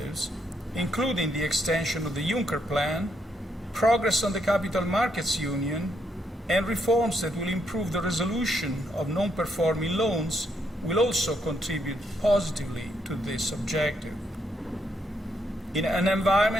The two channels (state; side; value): normal; both; correlation 0.76